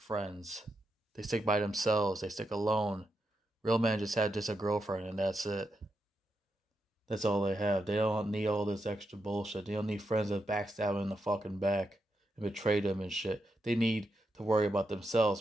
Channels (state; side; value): normal; both; correlation 0.85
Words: They stick by themselves. They stick alone. Real men just have just a girlfriend and that's it. That's all they have. They don't need all this extra bullshit. They don't need friends that backstab them in the fucking back and betray them and shit. They need to worry about